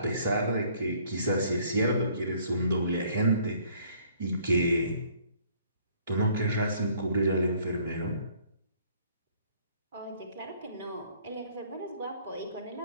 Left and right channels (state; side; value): inverted; both; correlation -0.60